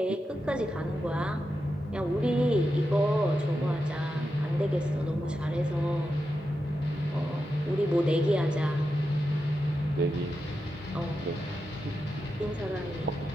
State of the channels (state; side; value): normal; both; correlation 0.88